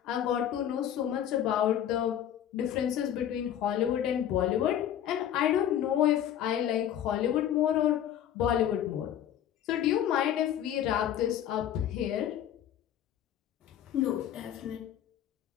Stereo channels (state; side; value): quieter; right; 10.5 dB